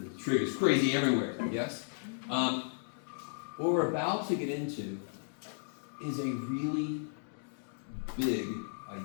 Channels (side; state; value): right; silent; digital silence